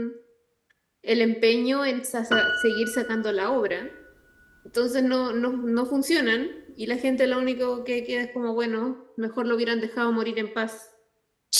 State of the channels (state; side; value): identical; both; correlation 1.00